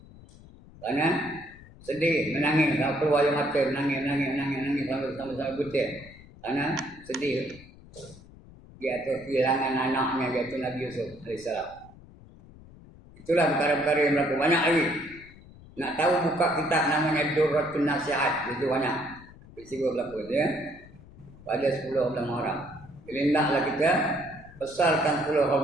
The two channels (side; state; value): left; noise; rumble, 21 dB below the sound